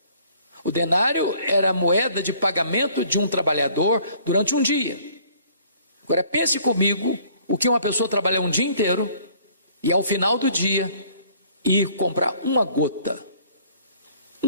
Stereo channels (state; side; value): inverted; both; correlation -0.58